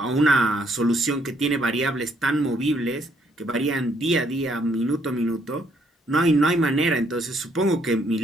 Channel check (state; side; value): normal; both; correlation 0.69